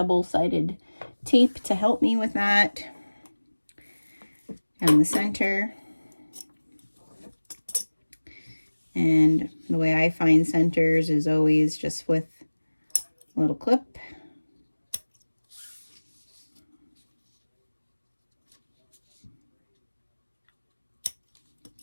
tape to help me with that. And the center. And the way I find centers is always just with a little clip.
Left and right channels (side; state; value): both; inverted; correlation -1.00